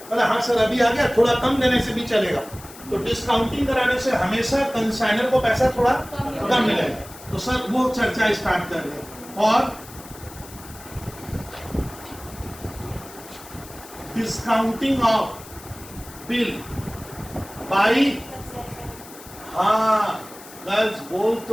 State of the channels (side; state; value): left; noise; hiss, 18 dB below the sound